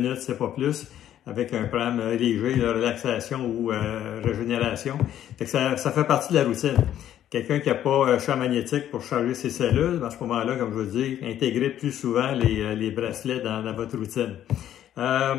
c'est pas plus, avec un programme léger de relaxation ou régénération. Fait que ça fait partie de la routine. Quelqu'un qui n'a pas champ magnétique pour charger ses cellules, à ce moment-là, comme je vous dis, intégrez plus souvent les bracelets dans votre routine.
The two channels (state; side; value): quieter; right; 11.3 dB